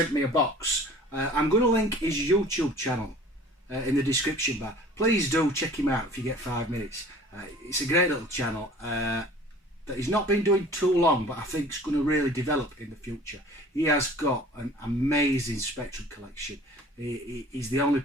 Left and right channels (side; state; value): both; normal; correlation 0.47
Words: me a box. I'm going to link his YouTube channel in the description bar. Please do check him out if you get 5 minutes. It's a great little channel that he's not been doing too long, but I think it's going to really develop in the future. He has got an amazing Spectrum collection. He's the only